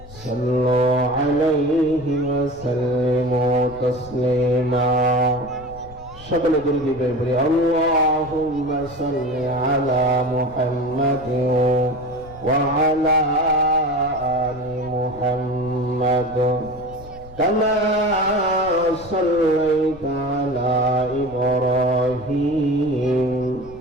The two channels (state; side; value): noise; left; rumble, 19 dB below the sound